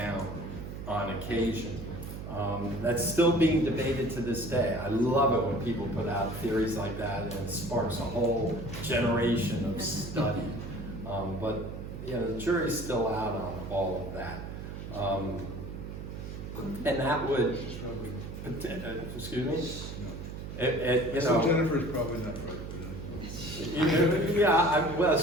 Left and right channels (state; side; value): noise; right; hum, 8 dB below the sound